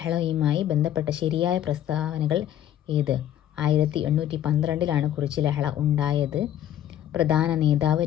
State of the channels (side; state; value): right; quieter; 11.2 dB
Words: ബന്ധപ്പെട്ട ശരിയായ പ്രസ്താവനകൾ ഏത്? 1812 കുറിച്യ ലഹള ഉണ്ടായത്. പ്രധാന നേതാവ്